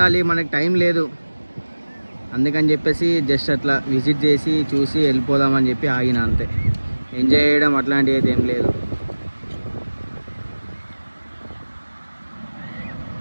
మనకు టైం లేదు. అందుకని చెప్పేసి జస్ట్ అట్లా విజిట్ చేసి చూసి వెళ్ళిపోదామని చెప్పి ఆగిన, అంతే. ఎంజాయ్ చేయడం అట్లాంటివి అయితే ఏం లేదు.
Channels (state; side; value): inverted; both; correlation -1.00